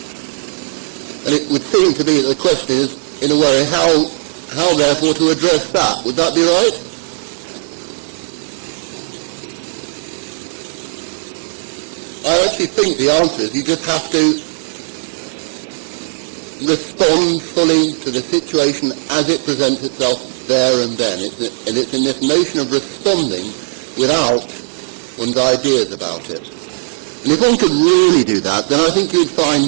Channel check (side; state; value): left; silent; 60 dB below the other